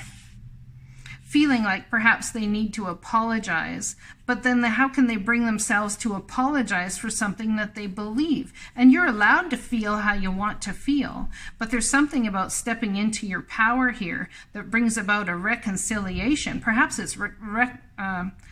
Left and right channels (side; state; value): both; identical; correlation 1.00